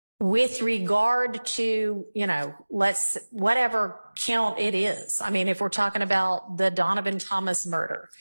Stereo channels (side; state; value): both; inverted; correlation -1.00